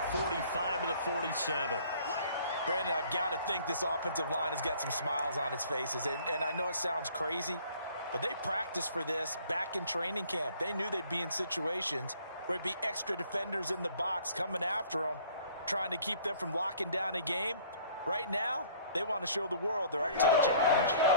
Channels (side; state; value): both; inverted; correlation -0.55